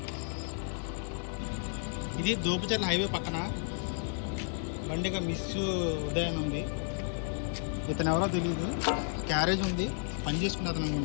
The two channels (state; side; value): silent; right; 56 dB below the other